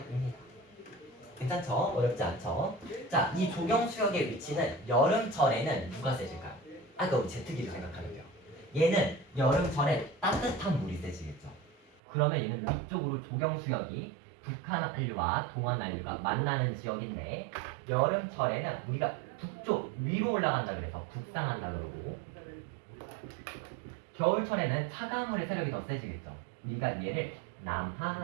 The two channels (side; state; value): left; drops out; at 12.0 s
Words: 괜찮죠? 어렵지 않죠? 자, 이 조경수역의 위치는 여름철에는 누가 세질까요? 아까 우리 제트기를 생각하면 돼요. 얘는 여름철에 따뜻한 물이 세지겠죠. 그러면 얘는 위쪽으로 조경수역이 북한한류와 동한한류가 만나는 지역인데 여름철에는 우리가 북쪽 위로 올라간다 그래서 북상한다 그러고 겨울철에는 차가운 물의 세력이 더 세지겠죠. 우리가 얘를